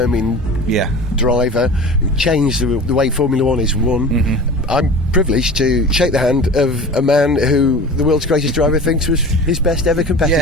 driver who changed the way Formula One is won. I'm privileged to shake the hand of a man who the world's greatest driver thinks was his best ever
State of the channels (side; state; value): both; normal; correlation 0.36